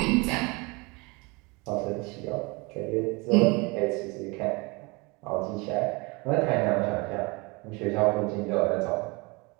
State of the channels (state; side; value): quieter; left; 26.9 dB